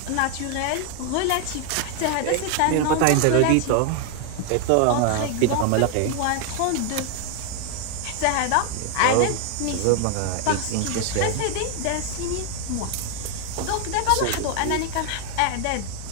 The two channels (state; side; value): different; both; correlation 0.00